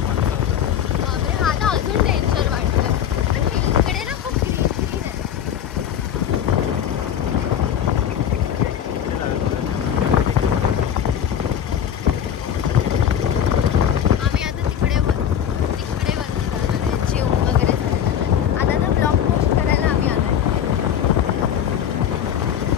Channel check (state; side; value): quieter; right; 9.3 dB